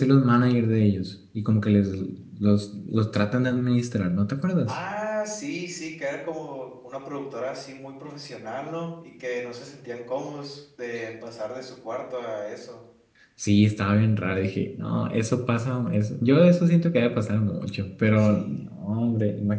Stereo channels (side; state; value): both; identical; correlation 1.00